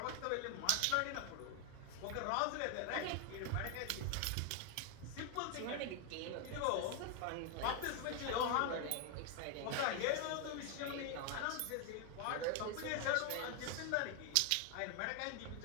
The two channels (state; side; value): different; both; correlation 0.00